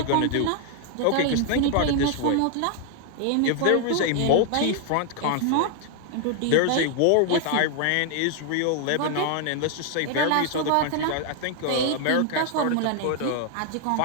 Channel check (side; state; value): both; different; correlation 0.00